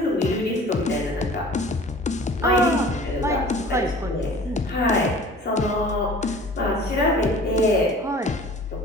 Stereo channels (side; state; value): both; normal; correlation 0.45